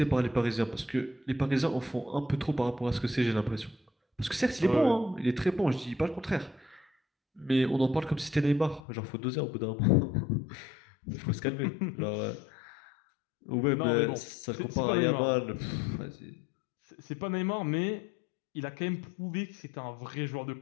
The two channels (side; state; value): right; drops out; at 8.8 s